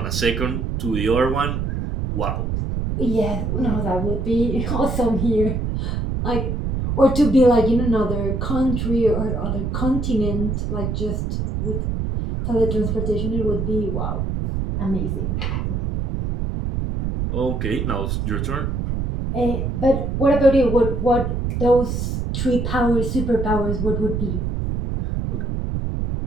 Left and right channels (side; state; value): right; noise; rumble, 1 dB below the sound